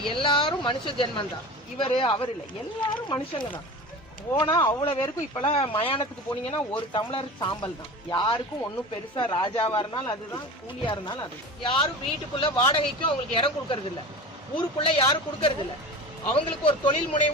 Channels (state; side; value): normal; both; correlation 0.33